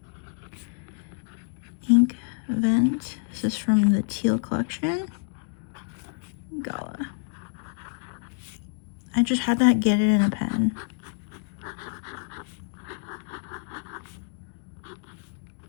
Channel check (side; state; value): right; silent; digital silence